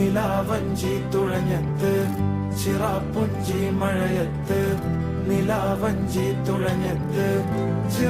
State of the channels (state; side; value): identical; both; correlation 1.00